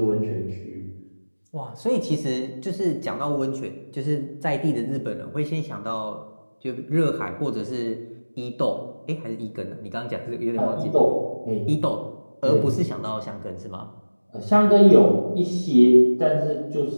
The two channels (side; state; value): both; inverted; correlation -1.00